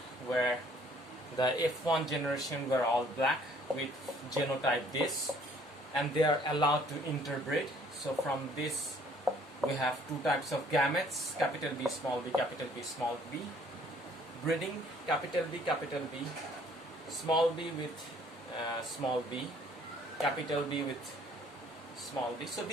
where the F1 generation were all black with genotype this, and they are allowed to interbreed. So from this, we have two types of gametes: capital B, small b, breeding capital B, small b with small b, capital B with small b. So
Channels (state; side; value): normal; both; correlation 0.59